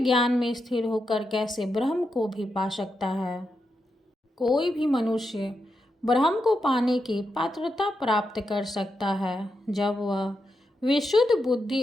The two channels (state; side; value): normal; both; correlation 0.85